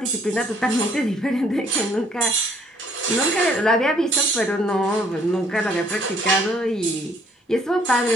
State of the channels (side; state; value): both; normal; correlation 0.63